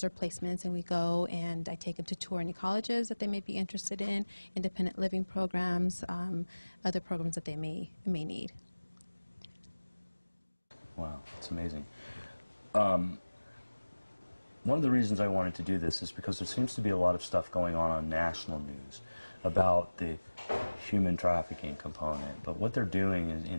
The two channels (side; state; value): both; inverted; correlation -1.00